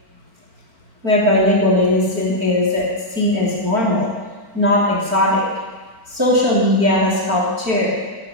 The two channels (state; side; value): late; left; 4.4 ms